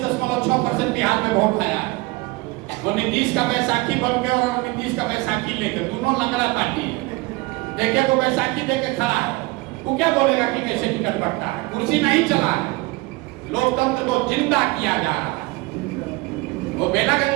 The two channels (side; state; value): left; quieter; 23.0 dB